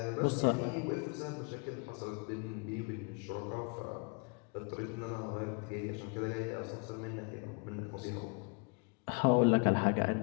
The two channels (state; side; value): quieter; right; 34.0 dB